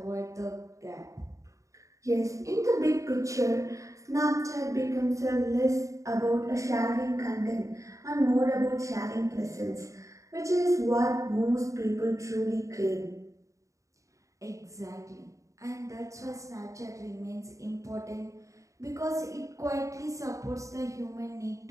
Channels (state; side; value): late; left; 0.16 ms